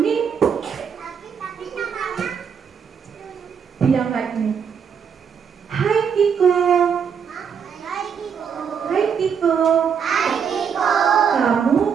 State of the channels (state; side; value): quieter; left; 7.0 dB